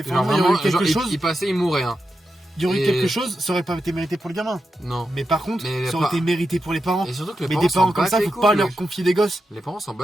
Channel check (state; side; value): normal; both; correlation 0.88